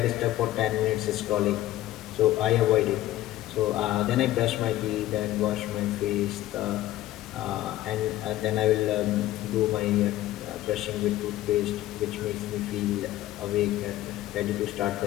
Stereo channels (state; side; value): quieter; right; 14.9 dB